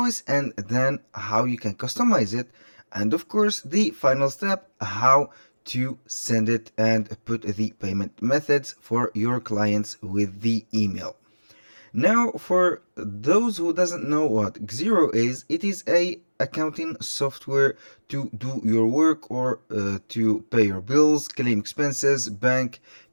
and then how you can customize it, and of course the final step, how to send it and put the payment methods for your clients with the email. Now, for those who doesn't know what Xero is, it is a accounting software to do your work or to pay your bills, claim expenses, bank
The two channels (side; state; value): both; inverted; correlation -1.00